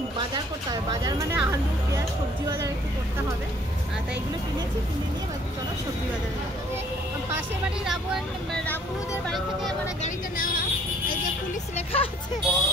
বাজার করতে হবে, বাজার মানে আলু পেঁয়াজ সবজি বাজার একটু করতে হবে। তাই এগুলো কিনেছি, কিনে নিয়ে চলো সবজি বাজারে যাবো। পাশের বাড়ি রাবুদের বাড়ি থেকে মানে গাড়িটা নেওয়া, এই যে পুলিশ লেখা আছে,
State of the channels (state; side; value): normal; both; correlation 0.59